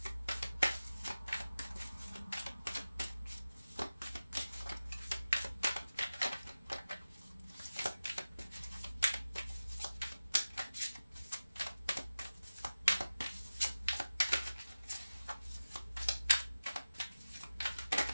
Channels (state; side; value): inverted; both; correlation -0.96